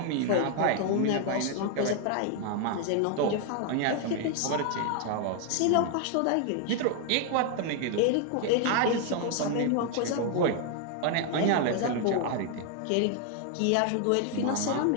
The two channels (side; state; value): both; different; correlation 0.00